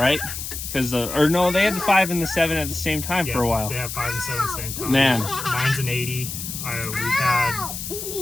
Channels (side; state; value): left; noise; hiss, 7 dB below the sound